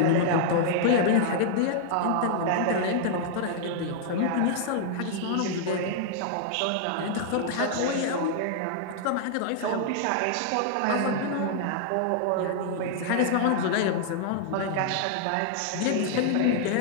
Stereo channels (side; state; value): both; different; correlation -0.01